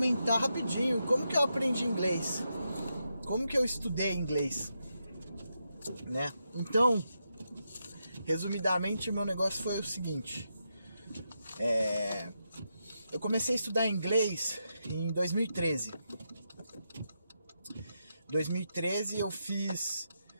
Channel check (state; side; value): inverted; both; correlation -0.85